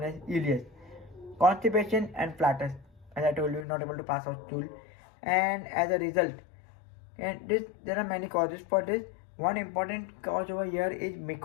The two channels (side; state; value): right; drops out; at 3.7 s